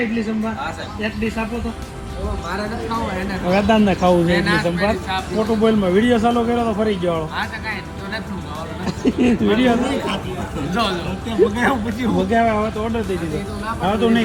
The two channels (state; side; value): identical; both; correlation 1.00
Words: ઇડલી સંભાર એક ડીશ આપો તો. વેદાંત ને ખાવું છે ઇડલી સંભાર. મોટું બોલમાં વિડીયો ચાલુ કર્યો તો ફરી ગયો વિડીયો મગાવ્યા. હવે તો ઓર્ડર દઈ દીધો. હવે તો